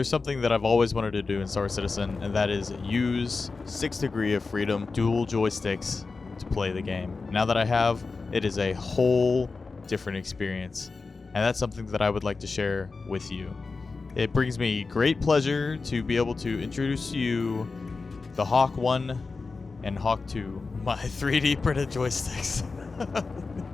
something that I've always wanted to do in Star Citizen, and that is use 6 Degree of Freedom dual joysticks to play the game. Now that I have, it is a whole different experience, and that's something that I would like to share with you. It brings me great pleasure to be able to introduce you the Hawk 1 and Hawk 2, my 3D printed joysticks.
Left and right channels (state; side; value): quieter; right; 4.2 dB